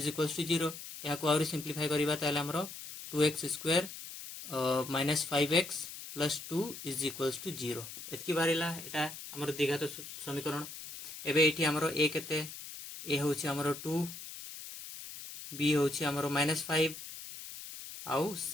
equals to 0 या को आउरी सिंप्लीफाई करिबा ताले हमरो 2x square minus 5x plus 2 is equals to 0 एतकी बारिला एटा हमर द्विघात समीकरण एबे एठी हमरो a केते a होछि हमरो 2 b होछि हमरो माइनस 5 आउ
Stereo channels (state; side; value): noise; left; hiss, 11 dB below the sound